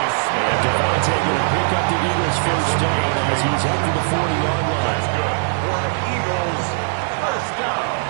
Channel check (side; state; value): left; silent; 66 dB below the other